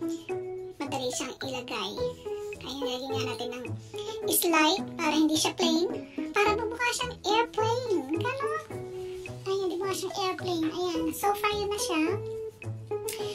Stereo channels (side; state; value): both; identical; correlation 1.00